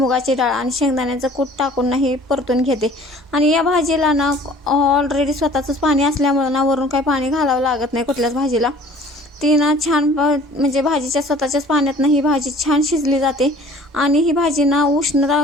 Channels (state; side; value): normal; both; correlation 0.50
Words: डाळ आणि शेंगदाण्याचं कूट टाकून ना ही परतून घेते। आणि या भाजीला ना ऑलरेडी स्वतःचंच पाणी असल्यामुळे ना वरून काही पाणी घालावं लागत नाही कुठल्याच भाजीला। ती ना छान म्हणजे भाजीच्या स्वतःच्याच पाण्यात ना ही भाजी छान शिजली जाते आणि ही भाजी ना